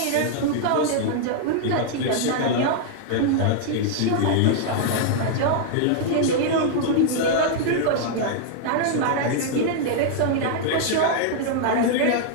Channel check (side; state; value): both; different; correlation -0.01